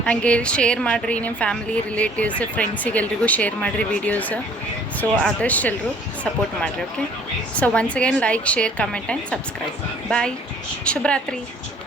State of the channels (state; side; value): normal; both; correlation 0.56